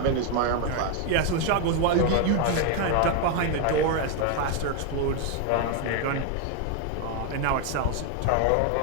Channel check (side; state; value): both; different; correlation 0.01